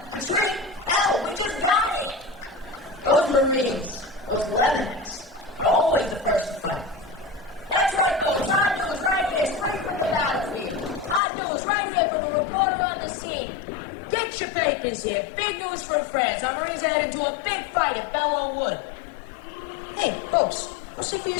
retreat? Hell, we just got here. Those Marines, those Leathernecks, they're always the first to fight. That's right, folks. Hot news right here, straight from the battlefield. Hot news right here from the reporter on the scene. Get your papers here. Big news from France. Our Marines are heading to a big fight at Belleau Wood. Hey, folks, go see for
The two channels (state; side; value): drops out; right; at 11.2 s